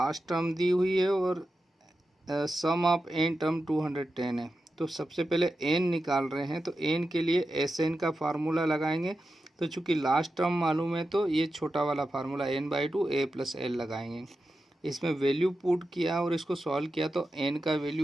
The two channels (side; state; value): both; normal; correlation 0.91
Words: टर्म दी हुई है और सम ऑफ n टर्म 210 है। तो सबसे पहले n निकाल रहे हैं, तो n के लिए Sn का फार्मूला लगाएंगे। तो चूंकि लास्ट टर्म मालूम है तो ये छोटा वाला formula n/2 a plus l लगाएंगे। इसमें वैल्यू पुट किया और इसको सॉल्व किया तो n का